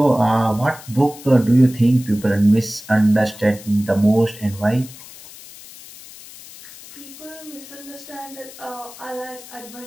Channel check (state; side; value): noise; left; hiss, 18 dB below the sound